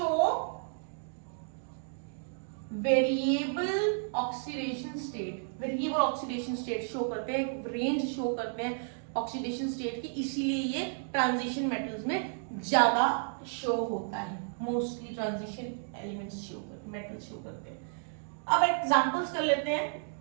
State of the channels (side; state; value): left; silent; digital silence